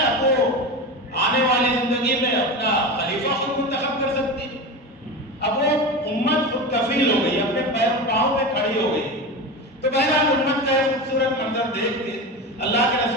اب وہ آنے والی زندگی میں اپنا خلیفہ خود منتخب کر سکتی ہے۔ اب وہ امت خود کفیل ہو گئی، اپنے پاؤں پہ کھڑی ہو گئی۔ تو بہرحال امت کا ایک خوبصورت منظر دیکھ کے اللہ کے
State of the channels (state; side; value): normal; both; correlation 0.25